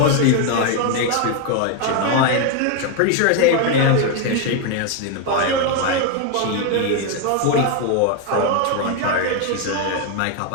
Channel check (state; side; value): different; both; correlation 0.01